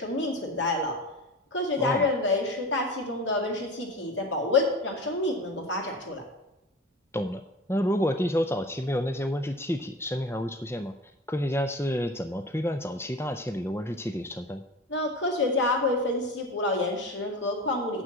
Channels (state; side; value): normal; both; correlation 0.33